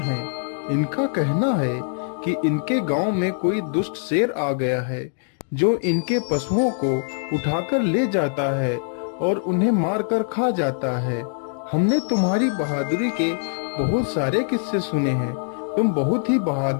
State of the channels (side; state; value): right; silent; digital silence